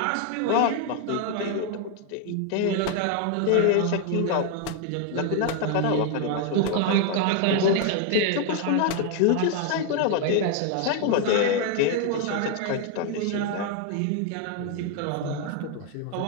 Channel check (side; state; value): both; different; correlation 0.01